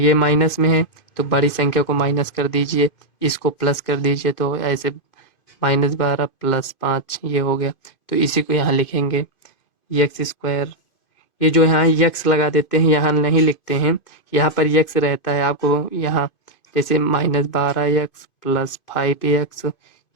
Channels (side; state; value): right; late; 2.5 ms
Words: माइनस में है तो बड़ी संख्या को माइनस कर दीजिए, इसको प्लस कर दीजिए, तो ऐसे -12 + 5 ये हो गया। तो इसी को यहाँ लिखेंगे एक्स स्क्वायर। ये जो यहाँ यक्स लगा देते हैं, यहाँ नहीं लिखते हैं, यहाँ पर यक्स रहता है आपको यहाँ, जैसे -12x + 5x